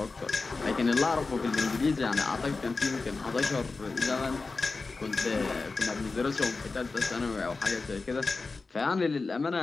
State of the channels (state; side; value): quieter; right; 3.9 dB